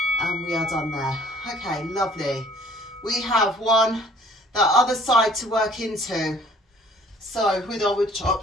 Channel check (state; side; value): normal; both; correlation 0.55